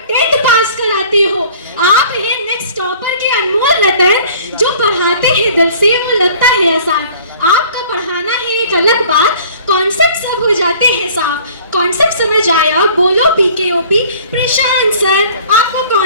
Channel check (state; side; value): inverted; both; correlation -0.51